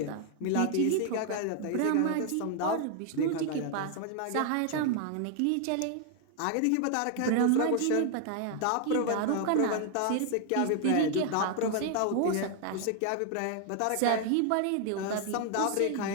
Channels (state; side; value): different; both; correlation 0.00